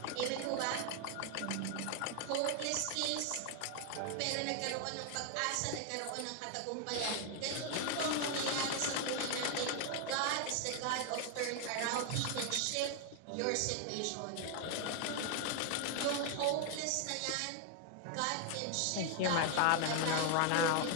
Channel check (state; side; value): different; both; correlation 0.00